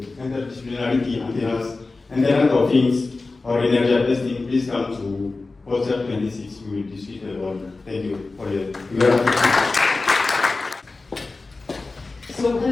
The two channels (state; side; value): quieter; right; 3.6 dB